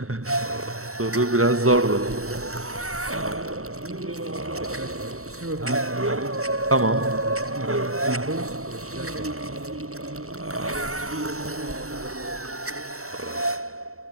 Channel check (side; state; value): left; late; 0.64 ms